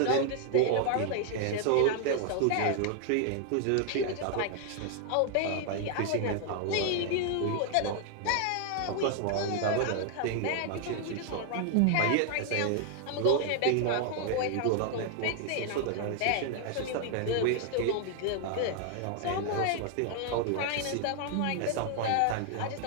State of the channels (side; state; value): both; different; correlation 0.00